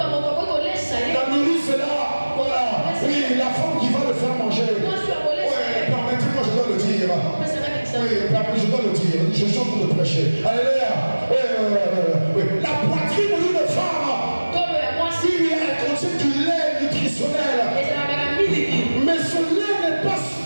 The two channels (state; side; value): inverted; both; correlation -1.00